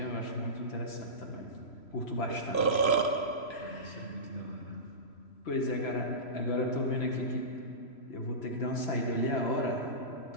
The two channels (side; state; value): right; late; 3.0 ms